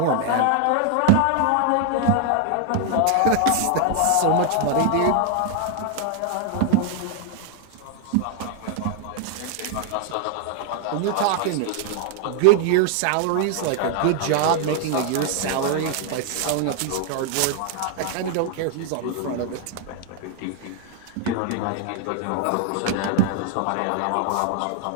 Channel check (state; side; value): different; both; correlation 0.00